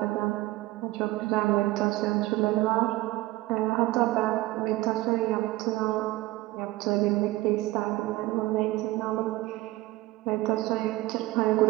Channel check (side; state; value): left; quieter; 18.5 dB